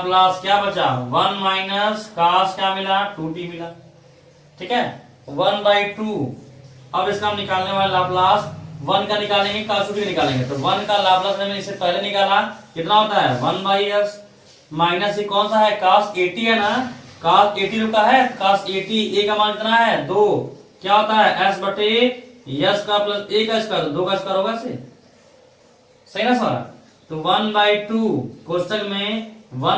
क्या बचा 1 माइनस cos क्या मिला 2t मिला। ठीक है, 1/2। अब इसका हम निकालने वाले लाप्लास 1 का निकालेंगे cos 2t निकालेंगे, तो 1 का लाप्लास मैंने इससे पहले निकाला, कितना होता है 1/s माइनस ये कौन सा है cos 80 है ना, cos 80 रुका है, cos 80 a का मान कितना है 2, क्या होता है s बटे s का प्लस a का स्क्वायर, 2 का स्क्वायर होगा इसे, सही ना सारा। तो 1/2 कोष्टक में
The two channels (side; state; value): both; identical; correlation 1.00